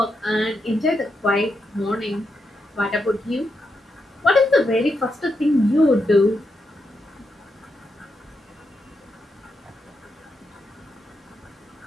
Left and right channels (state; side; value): normal; both; correlation 0.83